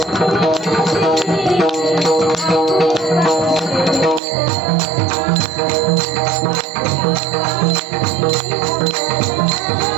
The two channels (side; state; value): left; drops out; at 4.2 s